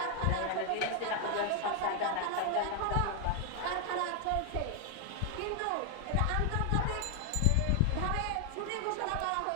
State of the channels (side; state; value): both; different; correlation 0.00